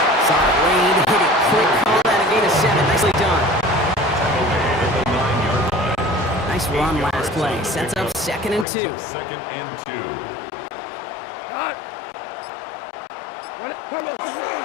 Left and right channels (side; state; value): right; drops out; at 8.7 s